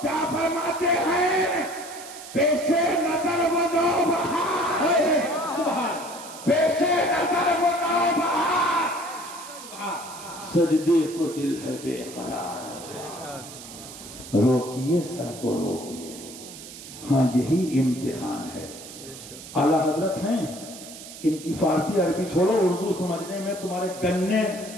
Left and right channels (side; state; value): right; noise; hiss, 14 dB below the sound